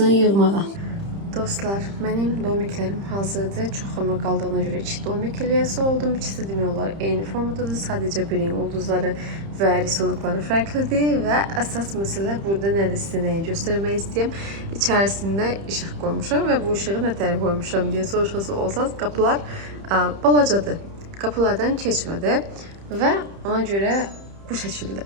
yığmağa. Dostlar, mənim domiklərim hazırdır. Çox ömür qaldığına görə 2 domik eləyəsi oldum. İkisi demək olar eyni formadadır. Sadəcə birinin ulduzları və risolukları fərqlidir və əsas məsələ burada nədir sizə nəyi göstərmək istəyəm. İçərisində işıq qoymuşam və bu işığı nə tərəf qoymuşam deyə soruşası olsanız, qapılar balacadır. Qapılardan keçmədi və ona görə bu şəkildə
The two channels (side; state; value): left; late; 30 ms